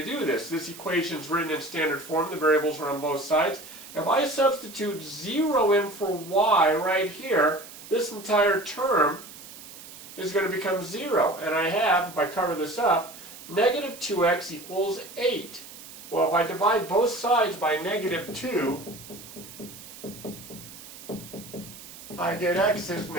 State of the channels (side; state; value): right; noise; hiss, 16 dB below the sound